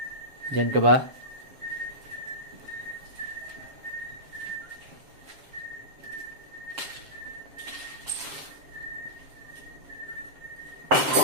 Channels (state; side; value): late; left; 7.3 ms